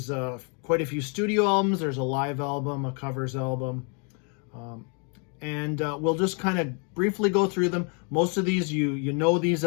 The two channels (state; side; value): quieter; right; 37.4 dB